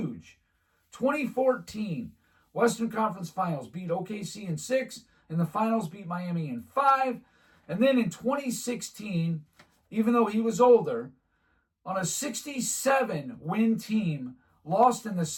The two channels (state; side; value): identical; both; correlation 1.00